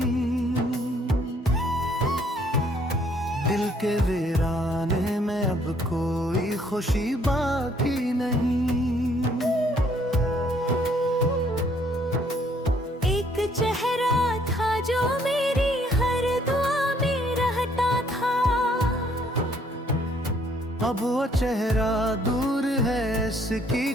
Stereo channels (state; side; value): normal; both; correlation 0.65